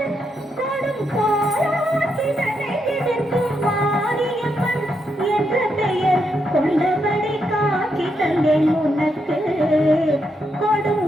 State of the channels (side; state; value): both; normal; correlation 0.81